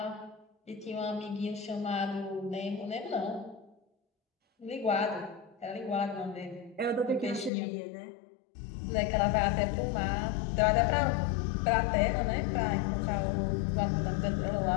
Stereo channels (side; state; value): right; drops out; at 7.5 s